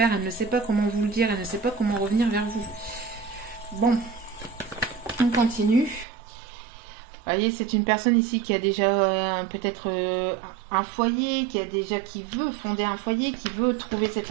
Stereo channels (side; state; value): left; drops out; at 6.1 s